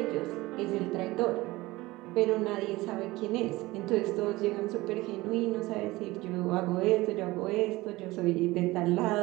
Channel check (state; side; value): quieter; left; 19.8 dB